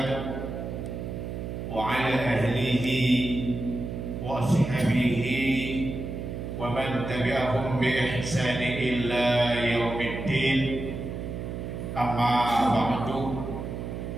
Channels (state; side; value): noise; right; hum, 6 dB below the sound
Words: wa ala ahlihi wa ashabihi wa man tabi'ahum bi ihsani illa yaumiddin. Amma ba'du.